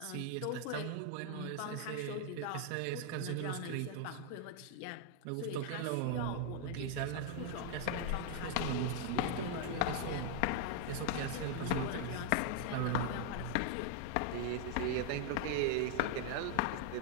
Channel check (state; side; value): different; both; correlation 0.00